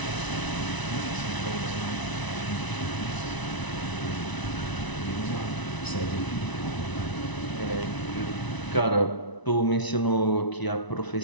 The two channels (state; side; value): late; right; 1.0 ms